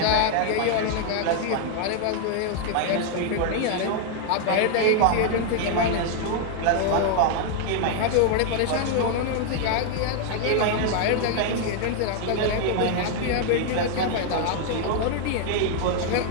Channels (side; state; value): both; different; correlation 0.00